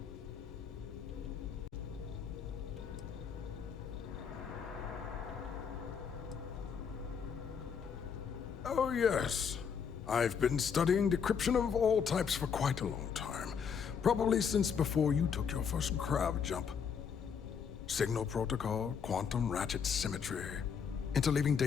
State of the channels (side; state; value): right; quieter; 6.8 dB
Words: Oh, yes. I've been studying decryption of all types for quite a long time. Probably since before you took your first crab jump. Signal protocol, quantum ratchet symmetry, interleaving